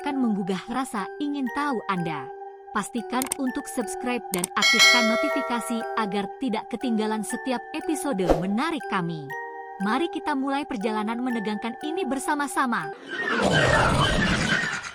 menggugah rasa ingin tahu Anda. Pastikan untuk subscribe dan aktifkan notifikasi agar tidak ketinggalan setiap episode menarik kami. Mari kita mulai perjalanan menegangkan ini bersama-sama.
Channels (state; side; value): identical; both; correlation 1.00